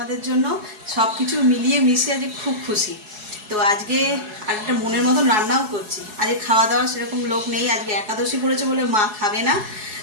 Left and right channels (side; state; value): left; late; 4.7 ms